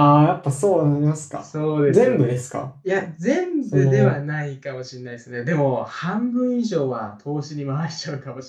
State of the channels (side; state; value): both; identical; correlation 1.00